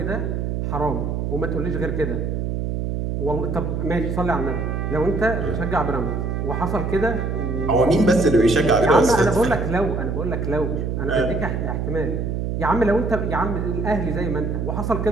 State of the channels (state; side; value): noise; right; hum, 1 dB below the sound